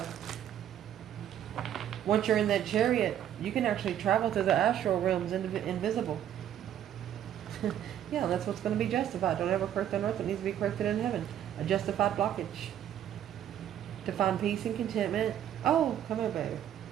Once you're in that chariot, you can actually travel through the astral realms invisible. Yeah, that's what's going to be justified. Don't ever correct on earth. It needs to be corrected in heaven. A justified blockage. To find peace and contentment. Oh, come here, baby.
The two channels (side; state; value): left; quieter; 10.6 dB